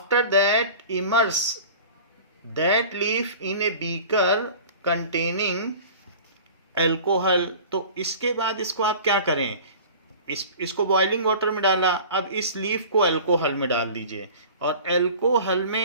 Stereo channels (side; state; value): both; inverted; correlation -0.40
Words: that immerse that leaf in a beaker containing alcohol। तो इसके बाद इसको आप क्या करें, इसको बॉइलिंग वाटर में डाला, अब इस लीफ को अल्कोहल में डाल दीजिए, और अल्कोहल